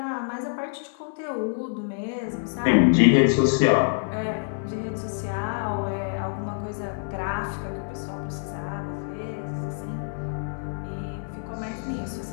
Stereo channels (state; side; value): silent; right; digital silence